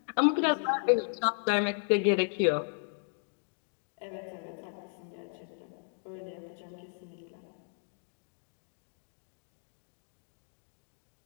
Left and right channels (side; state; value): right; silent; 55 dB below the other